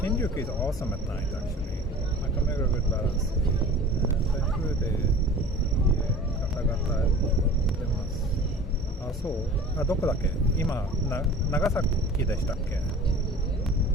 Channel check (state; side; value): normal; both; correlation 0.42